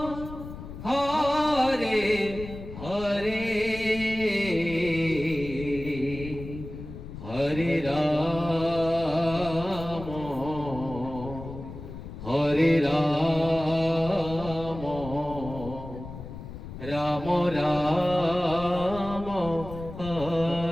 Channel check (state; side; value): noise; left; rumble, 12 dB below the sound